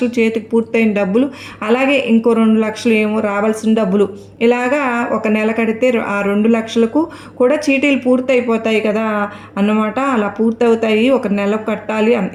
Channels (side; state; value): both; identical; correlation 1.00